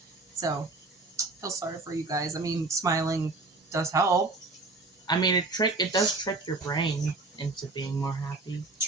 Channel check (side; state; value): left; quieter; 3.4 dB